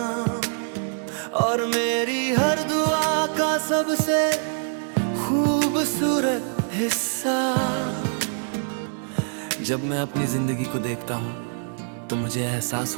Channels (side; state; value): left; silent; digital silence